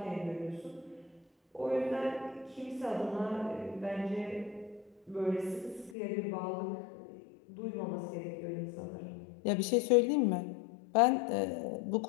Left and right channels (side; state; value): right; drops out; at 6.0 s